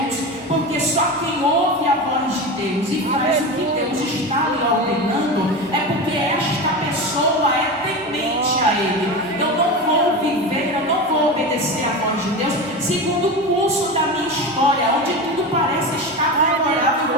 porque só quem ouve a voz de Deus e faz o que Deus está lhe ordenando é porque esta pessoa é temente a Ele. Eu não vou viver, eu não vou obedecer a voz de Deus segundo o curso da minha história, onde tudo parece estar favorável.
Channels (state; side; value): normal; both; correlation 0.24